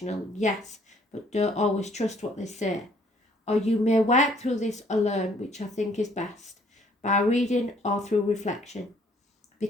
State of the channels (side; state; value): both; normal; correlation 0.62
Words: yes, but don't always trust what they say. Or you may work through this alone, which I think is best, by reading or through reflection. Be